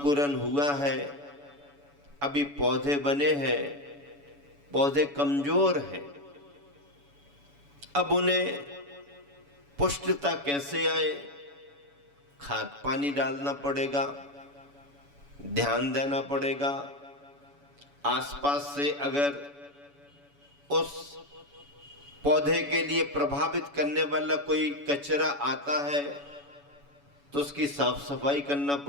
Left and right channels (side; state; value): left; late; 7.0 ms